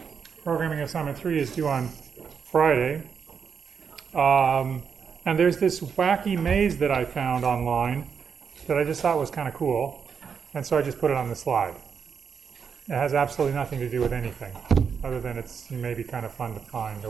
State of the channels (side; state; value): left; quieter; 6.5 dB